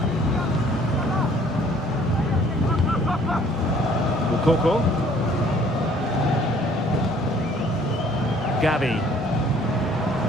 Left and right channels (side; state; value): both; normal; correlation 0.58